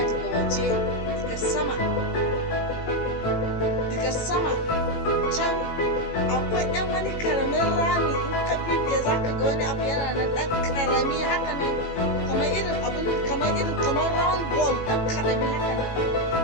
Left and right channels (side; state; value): right; late; 18 ms